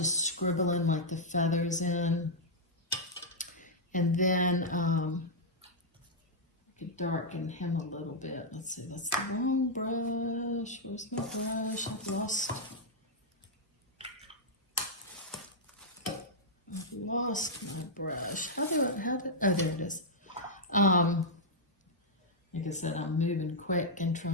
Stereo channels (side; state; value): both; normal; correlation -0.05